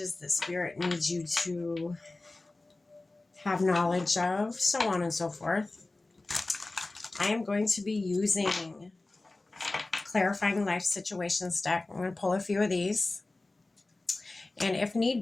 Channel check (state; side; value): quieter; right; 3.1 dB